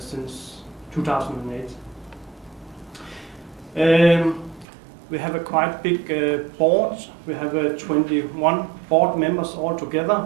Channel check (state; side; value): drops out; left; at 4.7 s